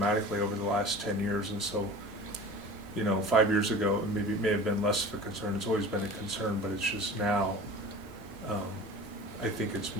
over the last 10 years. And so, 5 years ago, it may have been less of a concern. It's always been a concern, but it's just now, I think it's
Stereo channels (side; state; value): both; normal; correlation 0.38